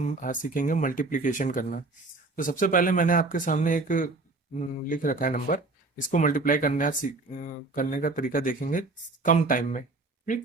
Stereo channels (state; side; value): quieter; left; 3.4 dB